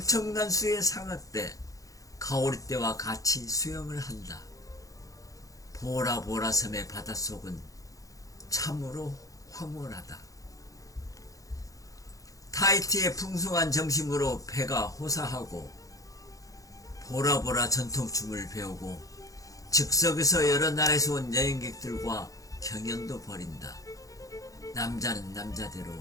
수의 상어떼, 가오리떼와 같이 수영을 한다. 보라보라 섬의 바닷속은 참으로 황홀하다. 타이티의 풍성한 점심으로 배가 호사하고 보라보라 전통춤을 배우고 즉석에서 여러 나라에서 온 여행객들과 경연도 벌인다. 남자는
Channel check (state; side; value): late; right; 0.17 ms